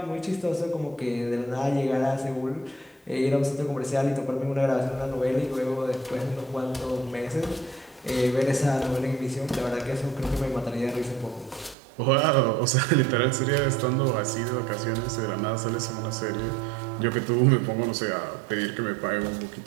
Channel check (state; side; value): drops out; left; at 11.8 s